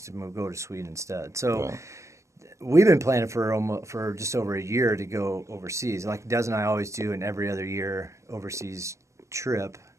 to go to Sweden instead. So Yeah. we've been planning for just over a year to go overseas. Like Des and I always do in every other year overseas trip.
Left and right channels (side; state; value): left; late; 0.15 ms